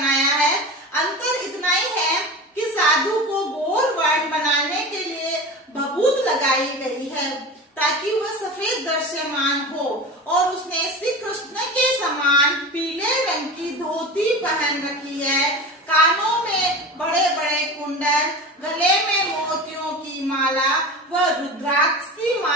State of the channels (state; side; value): normal; both; correlation 0.30